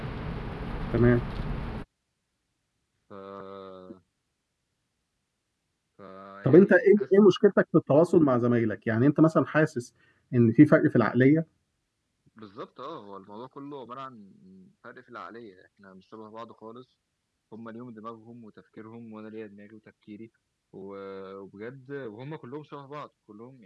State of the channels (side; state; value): both; identical; correlation 1.00